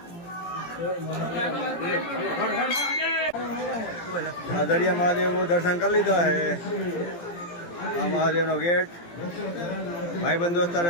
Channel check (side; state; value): right; late; 17 ms